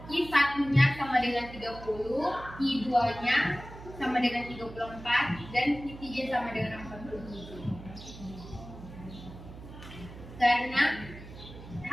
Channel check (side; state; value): right; noise; hum, 15 dB below the sound